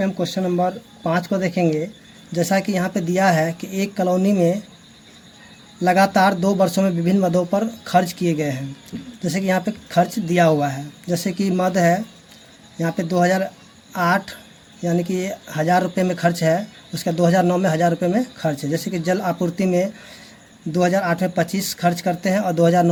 हम क्वेश्चन नंबर 5 को देखेंगे। जैसा कि यहाँ पे दिया है कि एक कॉलोनी में लगातार 2 वर्षों में विभिन्न मदों पर खर्च किए गए हैं। जैसे कि यहाँ पे खर्च दिया हुआ है, जैसे कि मद है यहाँ पे 2008 यानी कि 1000 रुपये में खर्च है, उसका 2009 में 1000 रुपये में खर्च है। जैसे कि जल आपूर्ति में 2008 में 25 खर्च करते हैं और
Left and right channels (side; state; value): both; identical; correlation 1.00